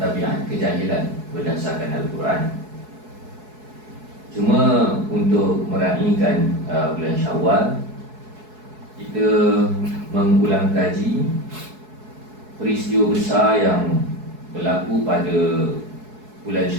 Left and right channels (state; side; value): late; left; 4.7 ms